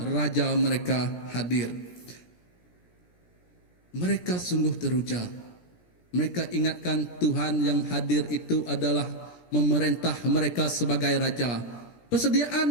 raja mereka hadir. Mereka sungguh teruja. Mereka ingatkan Tuhan yang hadir itu adalah memerintah mereka sebagai raja.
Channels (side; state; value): right; late; 17 ms